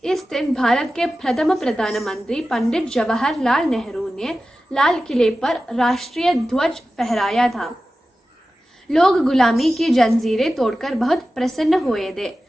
इस दिन भारत के प्रथम प्रधानमंत्री पंडित जवाहरलाल नेहरू ने लाल किले पर राष्ट्रीय ध्वज फहराया था। लोग गुलामी की जंजीरें तोड़कर बहुत प्रसन्न हुए थे।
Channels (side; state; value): both; normal; correlation 0.94